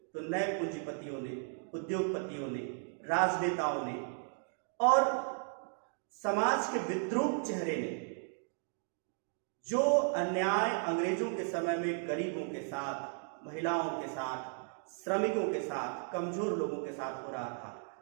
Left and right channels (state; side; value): silent; left; 54 dB below the other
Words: तो नए पूंजीपतियों ने, उद्योगपतियों ने, राजनेताओं ने और समाज के विद्रूप चेहरे ने जो अन्याय अंग्रेजों के समय में गरीबों के साथ, महिलाओं के साथ, श्रमिकों के साथ, कमजोर लोगों के साथ हो रहा था,